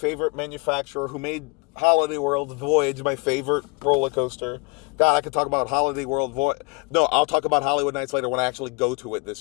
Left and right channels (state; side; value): quieter; right; 27.1 dB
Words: manufacturer who made Holiday World Voyage, my favorite roller coaster. God, I could talk about Holiday World Voyage. No, I'll talk about Hollywood Nights later when I actually go to it